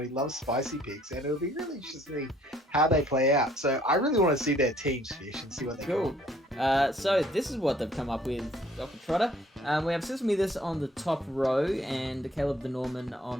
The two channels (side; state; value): both; normal; correlation 0.60